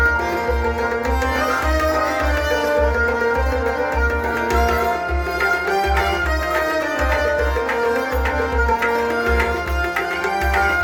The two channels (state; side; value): identical; both; correlation 1.00